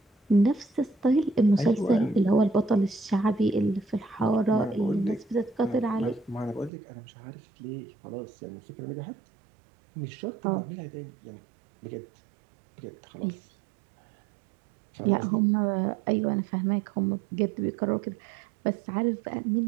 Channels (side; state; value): left; drops out; at 6.7 s